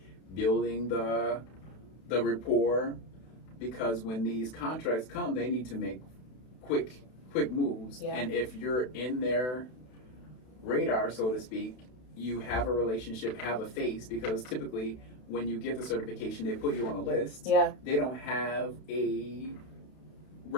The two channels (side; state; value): right; late; 32 ms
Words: building the rapport. Because when these contracts come, they need to make quick moves. Yeah. And if you're in their radar, so to speak, you have a relationship, have a face, because typically when you get the certification, they put you on a list. Yeah. They don't have a